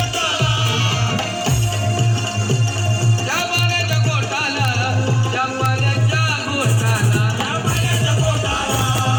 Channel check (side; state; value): both; identical; correlation 1.00